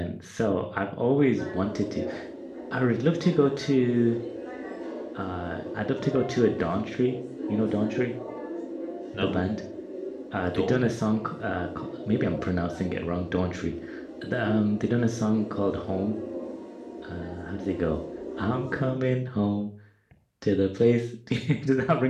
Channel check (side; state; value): both; identical; correlation 1.00